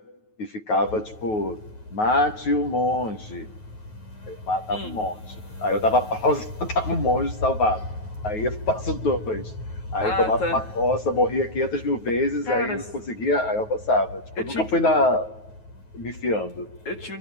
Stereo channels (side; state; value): right; late; 9.3 ms